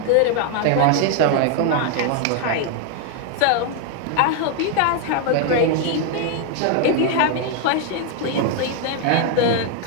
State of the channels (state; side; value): different; both; correlation 0.01